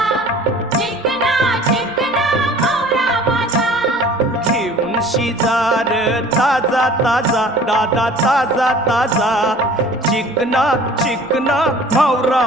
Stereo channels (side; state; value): both; normal; correlation 0.48